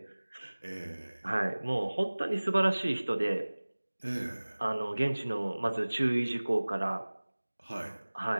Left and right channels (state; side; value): inverted; both; correlation -1.00